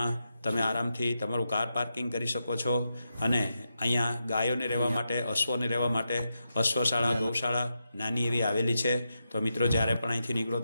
તમે આરામથી તમારું કાર પાર્કિંગ કરી શકો છો. અને અહીંયા ગાયોને રહેવા માટે, અશ્વોને રહેવા માટે અશ્વશાળા, ગૌશાળા નાની એવી આવેલી છે. તો મિત્રો, જ્યારે પણ અહીંથી નીકળો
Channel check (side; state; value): both; inverted; correlation -0.86